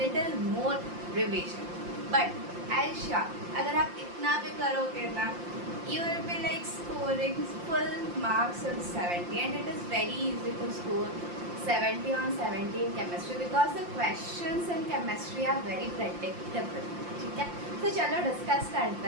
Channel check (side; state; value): left; late; 5.7 ms